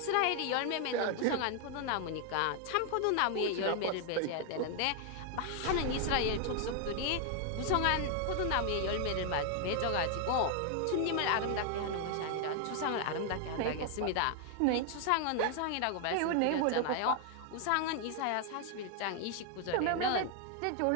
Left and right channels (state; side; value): different; both; correlation 0.00